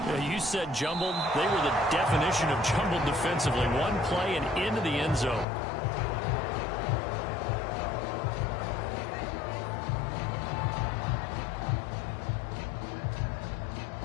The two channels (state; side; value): drops out; right; at 5.5 s